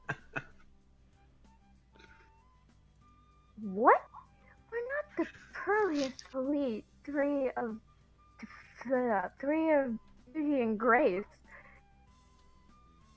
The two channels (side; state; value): both; identical; correlation 1.00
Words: What? We're not the pearliest elite three of beauty and grace.